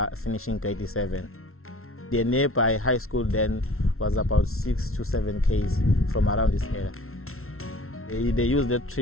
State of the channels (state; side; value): late; right; 0.62 ms